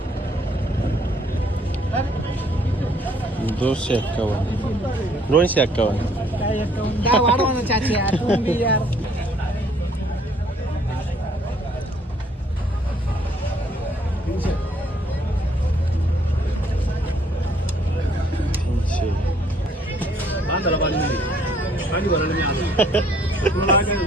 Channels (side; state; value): both; normal; correlation 0.63